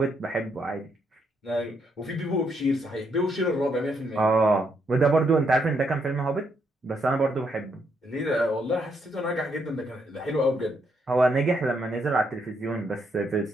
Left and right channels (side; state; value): both; normal; correlation 0.76